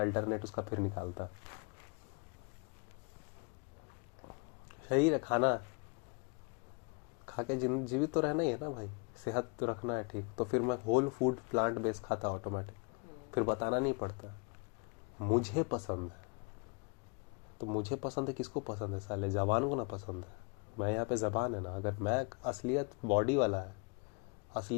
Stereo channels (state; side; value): quieter; right; 32.9 dB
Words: अल्टरनेट उसका फिर निकालता। शरीर है, खाना खा के जीवित तो रहना ही है ना भाई, सेहत तो रखना है ठीक, तो फिर मैं होल फूड प्लांट बेस्ड खाता ऑटोमेटिक, फिर बताना नहीं पड़ता मुझे पसंद है। तो मुझे पसंद है, किसको पसंद है साले, जबान को ना पसंद है। मैं यहाँ पे जबान है ना, अगर मैं असलियत बॉडी वाला है,